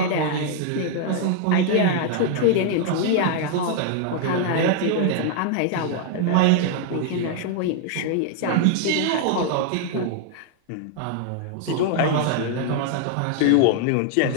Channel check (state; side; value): different; both; correlation 0.00